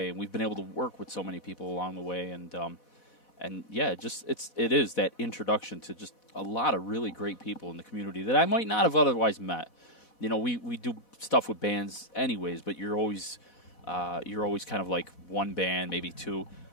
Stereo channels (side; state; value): right; late; 4.1 ms